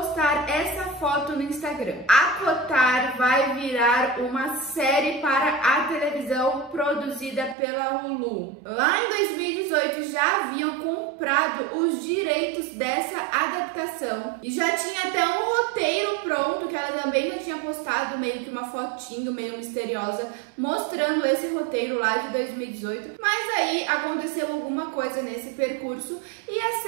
essa foto no Instagram. ACOTAR vai virar uma série para a televisão produzida pela Hulu. Lá em 2018 já haviam comprado os direitos dessa adaptação e já tinha até um roteiro pronto que ela também já tinha postado, meio que uma fotinho meio misteriosa mostrando esse roteiro lá de 2018, mas aí aconteceu alguma coisa nesse percurso e a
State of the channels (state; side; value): drops out; left; at 7.6 s